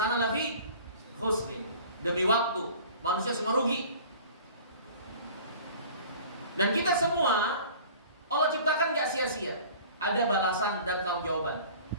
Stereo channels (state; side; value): inverted; both; correlation -0.45